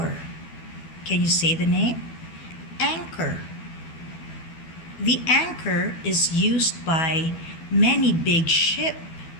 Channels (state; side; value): late; right; 12 ms